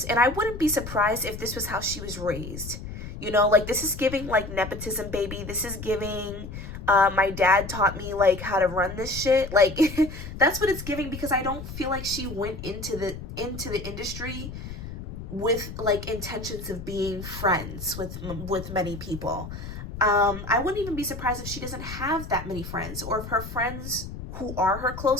And I wouldn't be surprised if this was how she was raised. Like, this is giving like nepotism, baby. This is giving, my dad taught me like how to run this shit. Like, that's what it's giving, because I don't feel like she went into the industry with like intentions of being friends with many people. I wouldn't even be surprised if she doesn't have that many friends, or if her friends who are her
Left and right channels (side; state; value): left; noise; rumble, 10 dB below the sound